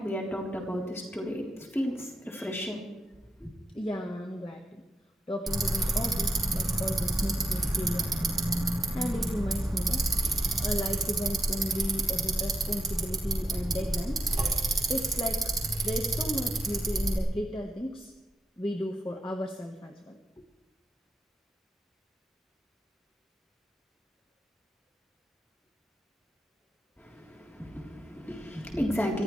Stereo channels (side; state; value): both; normal; correlation 0.81